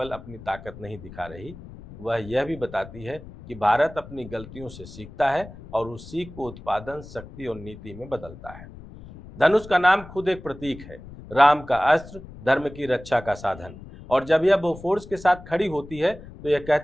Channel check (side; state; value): left; noise; rumble, 16 dB below the sound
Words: अपनी ताकत नहीं दिखा रही, वह यह भी बताती है कि भारत अपनी गलतियों से सीखता है और उस सीख को उत्पादन, शक्ति और नीति में बदलता है। धनुष का नाम खुद एक प्रतीक है, राम का अस्त्र, धर्म की रक्षा का साधन। और जब यह बोफोर्स के साथ खड़ी होती है, तो यह